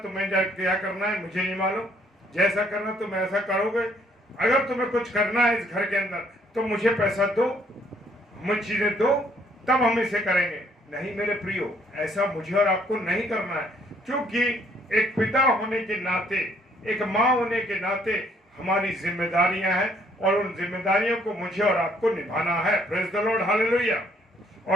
तुम्हें क्या करना है मुझे नहीं मालूम, जैसा करना तुम ऐसा करोगे, अगर तुम्हें कुछ करना है इस घर के अंदर तो मुझे पैसा दो, मुझे चीजें दो, तब हम इसे करेंगे। नहीं मेरे प्रियो, ऐसा मुझे और आपको नहीं करना है। क्योंकि एक पिता होने के नाते, एक माँ होने के नाते हमारी जिम्मेदारियां हैं और उन जिम्मेदारियों को मुझे और आपको निभाना है। Praise the lord, hallelujah.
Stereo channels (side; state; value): both; normal; correlation 0.65